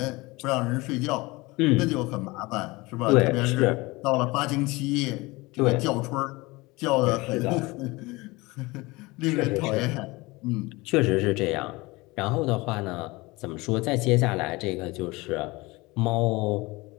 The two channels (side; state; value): right; quieter; 22.8 dB